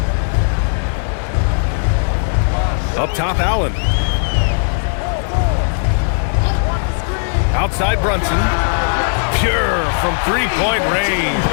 Up top, Allen. Outside Brunson. Pure from three-point range.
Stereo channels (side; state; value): right; silent; 68 dB below the other